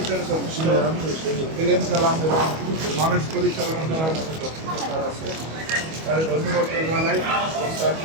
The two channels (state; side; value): late; left; 25 ms